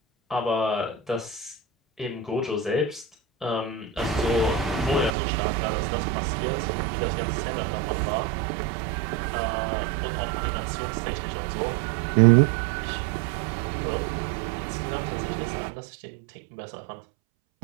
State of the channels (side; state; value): left; drops out; at 5.1 s